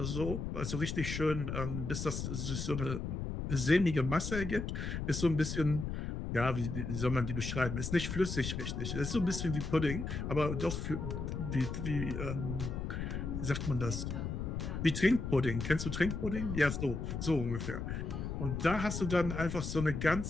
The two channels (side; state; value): left; noise; rumble, 4 dB below the sound